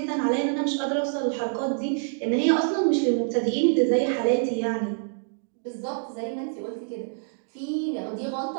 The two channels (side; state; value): left; silent; digital silence